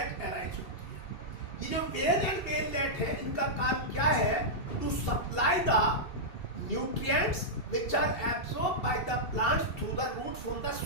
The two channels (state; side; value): late; right; 2.7 ms